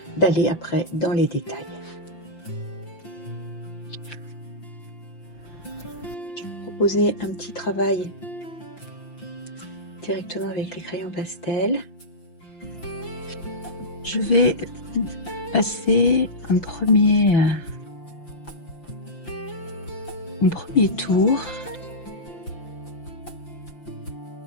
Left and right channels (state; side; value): late; right; 5.8 ms